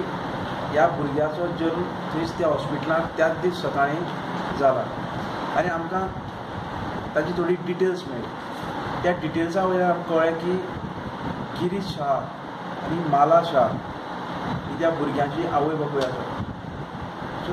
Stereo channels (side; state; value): both; identical; correlation 1.00